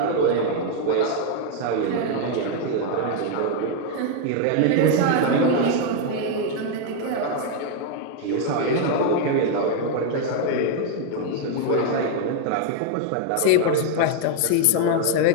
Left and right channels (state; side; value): different; both; correlation 0.00